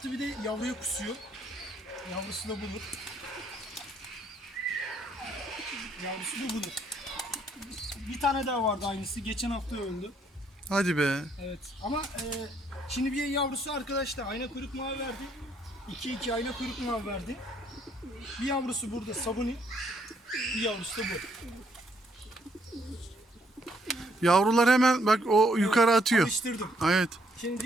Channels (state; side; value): normal; both; correlation 0.70